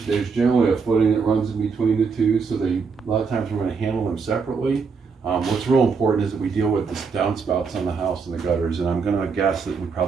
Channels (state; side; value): quieter; left; 5.3 dB